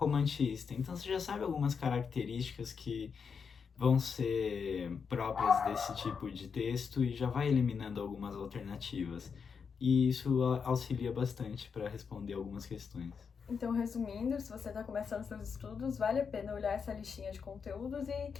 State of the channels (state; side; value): quieter; right; 6.1 dB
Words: Então você já sabe algumas características que vão ser próprias desse tipo de texto e já vai eliminando algumas alternativas. E isso auxilia bastante para responder algumas questões. Então, resumindo, se você está começando seus estudos, vale a pena olhar essa listinha de conteúdos e